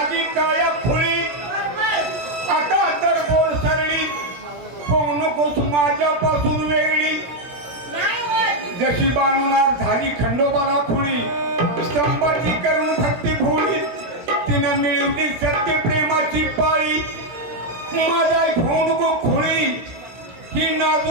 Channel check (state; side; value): late; left; 17 ms